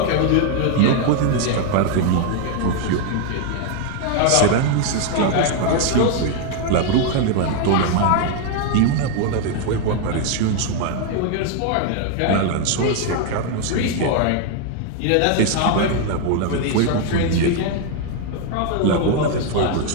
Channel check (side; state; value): both; different; correlation 0.01